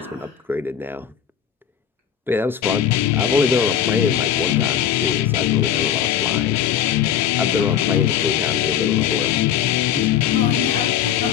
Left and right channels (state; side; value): quieter; right; 9.1 dB